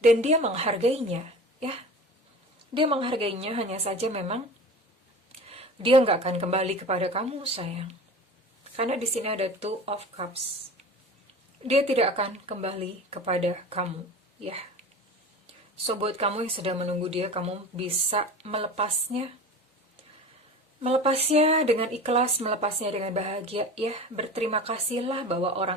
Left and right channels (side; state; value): both; normal; correlation 0.35